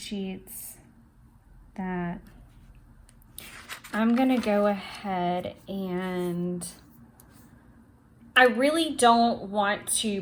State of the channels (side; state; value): both; identical; correlation 1.00